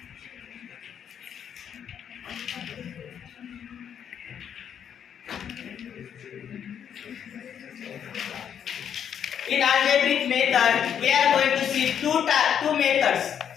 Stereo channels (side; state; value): right; quieter; 8.6 dB